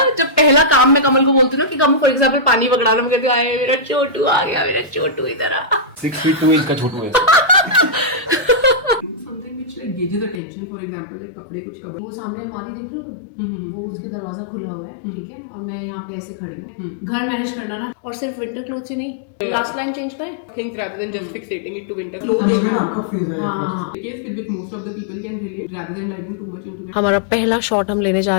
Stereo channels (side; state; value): right; drops out; at 10.4 s